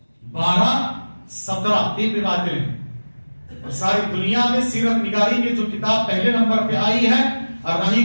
12، 17 تین روایتیں ہیں۔ اور ساری دنیا میں سیرت نگاری کی جو کتاب پہلے نمبر پہ آئی ہے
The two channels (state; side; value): inverted; both; correlation -1.00